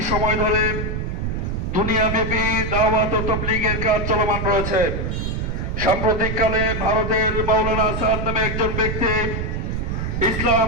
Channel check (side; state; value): right; noise; rumble, 2 dB below the sound